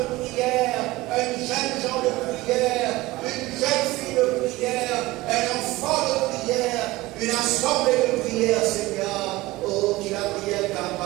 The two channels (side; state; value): left; quieter; 19.4 dB